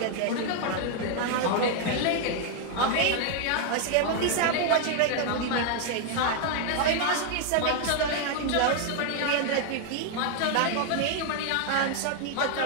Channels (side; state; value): both; different; correlation 0.00